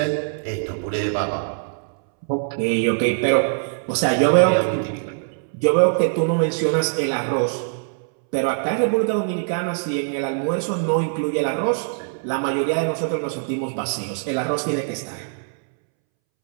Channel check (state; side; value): silent; left; 64 dB below the other